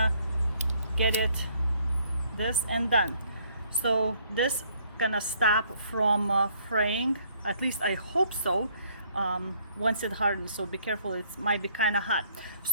get it this and done. So this gonna stop from fraying, at least I hope so, once it hardens. So be careful, it might be kind of hot.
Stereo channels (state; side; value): inverted; both; correlation -0.64